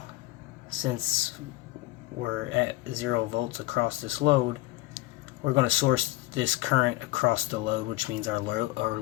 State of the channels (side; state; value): right; quieter; 17.9 dB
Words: since we're at 0 volts across this load, we're going to source this current across the load, which means our